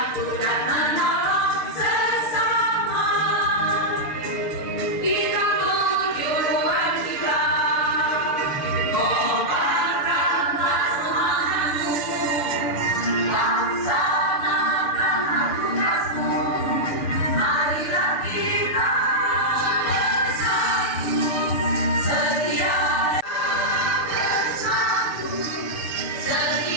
dan menolong sesama.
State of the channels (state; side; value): late; right; 6.8 ms